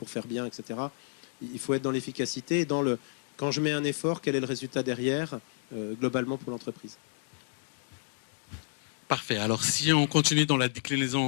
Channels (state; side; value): silent; right; digital silence